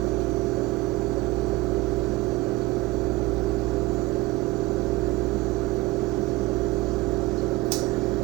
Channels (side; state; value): left; quieter; 19.2 dB